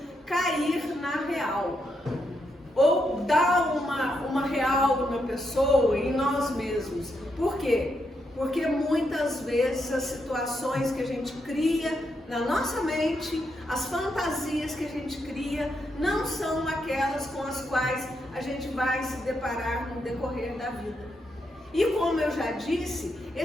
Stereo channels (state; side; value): normal; both; correlation 0.81